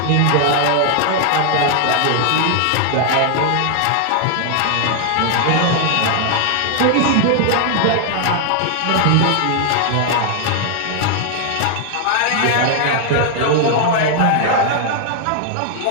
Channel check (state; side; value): different; both; correlation 0.00